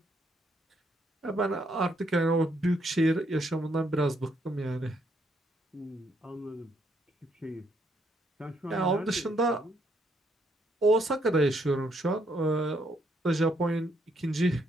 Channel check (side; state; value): both; normal; correlation 0.73